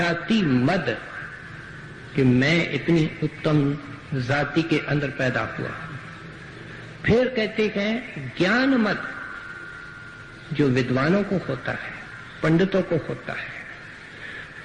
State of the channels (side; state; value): both; identical; correlation 1.00